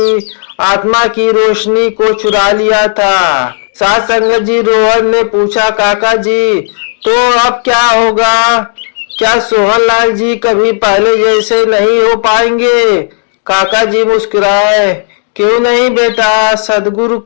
आत्मा की रोशनी को चुरा लिया था। साथ संगत जी, रोहन ने पूछा, काका जी तो अब क्या होगा? क्या सोहनलाल जी कभी पहले जैसे नहीं हो पाएंगे? काका जी मुस्कुराए, क्यों नहीं बेटा, सदगुरु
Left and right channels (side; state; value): right; silent; digital silence